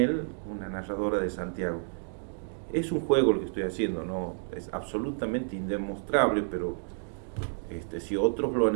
una narradora de Santiago. Es un juego lo que estoy haciendo, no es absolutamente indemostrable, pero si otros lo han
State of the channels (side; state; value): left; silent; digital silence